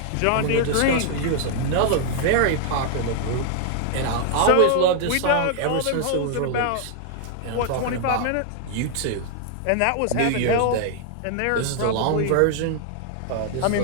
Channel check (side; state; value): both; different; correlation 0.00